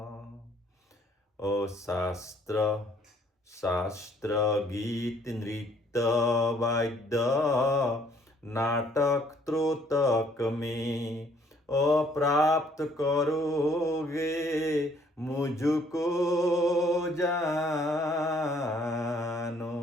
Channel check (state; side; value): normal; both; correlation 0.63